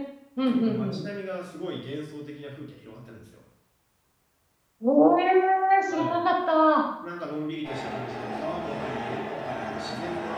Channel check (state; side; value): identical; both; correlation 1.00